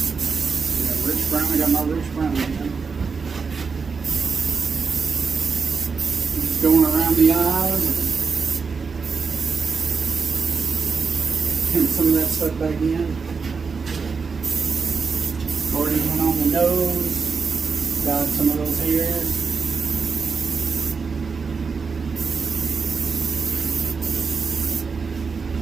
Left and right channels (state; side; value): quieter; left; 5.1 dB